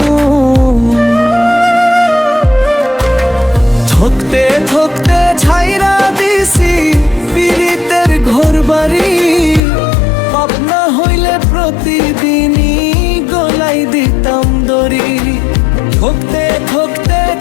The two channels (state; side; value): drops out; right; at 9.6 s